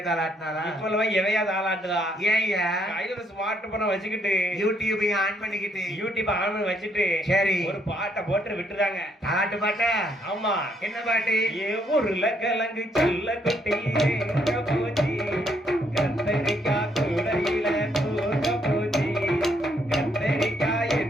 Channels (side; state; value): both; normal; correlation 0.71